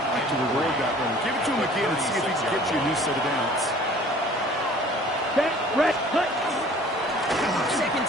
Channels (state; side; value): normal; both; correlation 0.50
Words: like to reward that run. Give it to him again and see if he can get you a new set of downs. Set, red, cut. Second